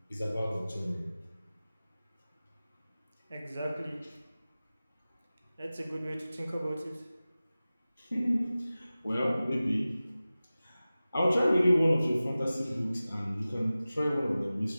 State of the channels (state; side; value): inverted; both; correlation -0.97